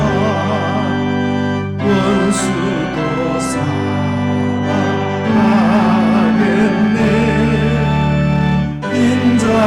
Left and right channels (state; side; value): identical; both; correlation 1.00